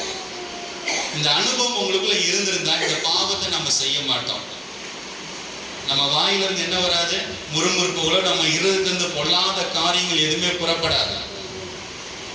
இந்த அனுபவம் உங்களுக்குள்ள இருந்திருந்தா இந்த பாவத்தை நம்ம செய்ய மாட்டோம். நம்ம வாயிலிருந்து என்ன வராது? முறுமுறுப்புகளோ நம்ம இருதயத்திலிருந்து பொல்லாத காரியங்கள் எதுவுமே புறப்படாது.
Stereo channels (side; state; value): both; identical; correlation 1.00